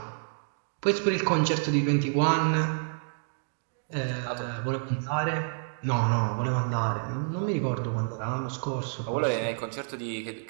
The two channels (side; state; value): left; silent; digital silence